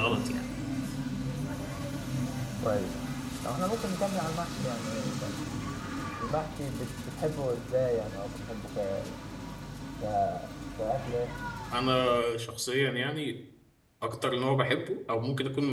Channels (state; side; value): identical; both; correlation 1.00